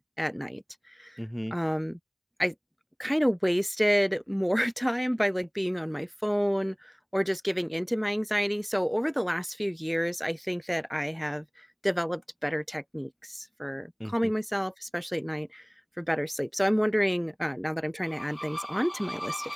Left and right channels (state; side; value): identical; both; correlation 1.00